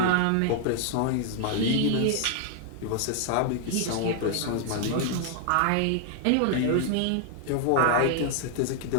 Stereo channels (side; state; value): both; different; correlation -0.01